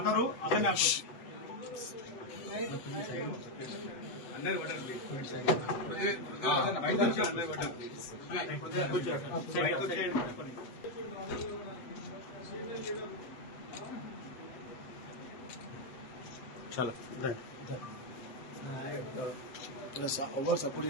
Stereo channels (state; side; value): late; right; 7.7 ms